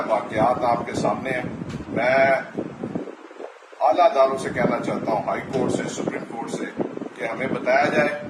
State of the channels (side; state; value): both; identical; correlation 1.00